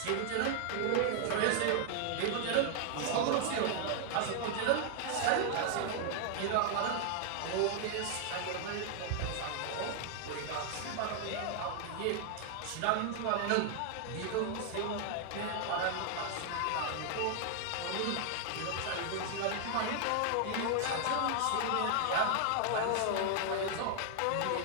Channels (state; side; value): different; both; correlation 0.00